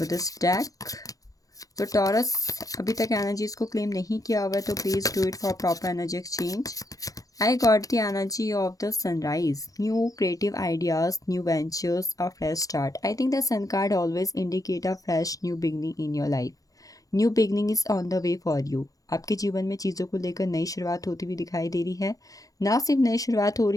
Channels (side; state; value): right; late; 0.17 ms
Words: this deck. तो टॉरस अभी तक एनर्जीज को क्लेम नहीं किया हुआ है तो please do it for proper energy exchange. I got the energy of the sunrise, new creative ideas, new ventures, a fresh start. I think the sun card always indicate a fresh new beginning in your life. New beginning is on the way for you. आपके जीवन में चीज़ों को लेकर नई शुरुआत होती हुई दिखाई दे रही है। ना सिर्फ नई शुरुआत हो